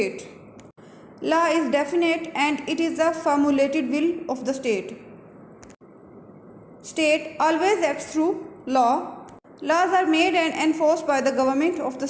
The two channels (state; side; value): identical; both; correlation 1.00